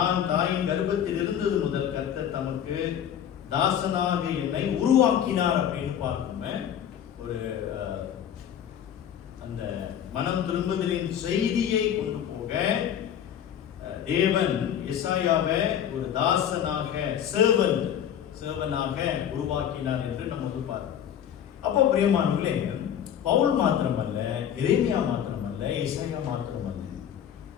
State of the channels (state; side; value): quieter; right; 9.6 dB